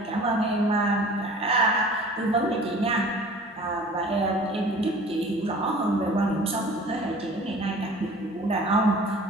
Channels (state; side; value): normal; both; correlation 0.45